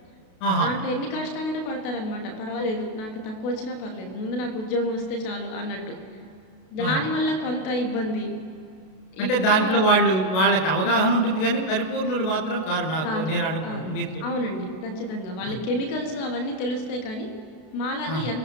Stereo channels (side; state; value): right; late; 32 ms